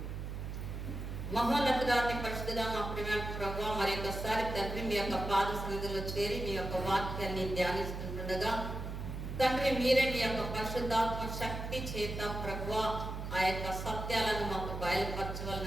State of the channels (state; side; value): noise; right; hum, 6 dB below the sound